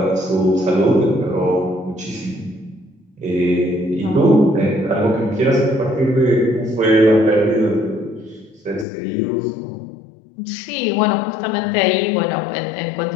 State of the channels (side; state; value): right; drops out; at 8.8 s